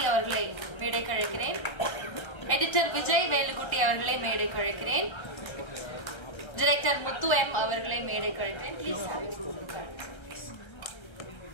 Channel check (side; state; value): right; late; 1.3 ms